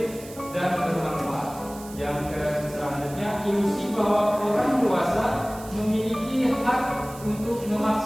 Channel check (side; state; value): right; noise; hiss, 18 dB below the sound